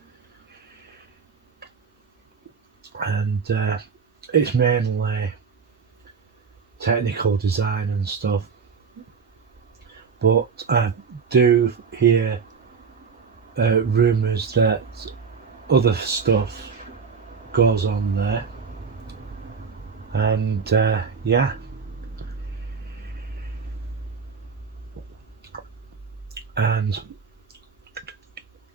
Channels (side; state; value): left; quieter; 5.7 dB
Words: and it's mainly technical design and stuff, but I do hear rumours that other stuff goes on there, and yeah, and